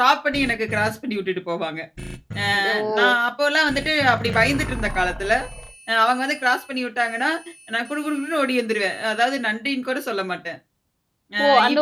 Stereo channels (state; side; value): identical; both; correlation 1.00